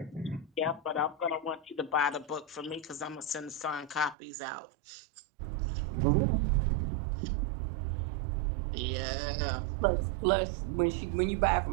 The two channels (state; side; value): drops out; left; at 4.2 s